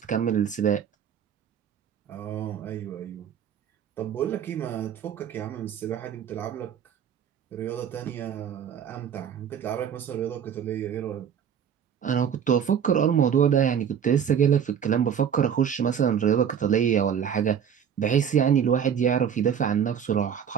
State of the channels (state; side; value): quieter; left; 8.3 dB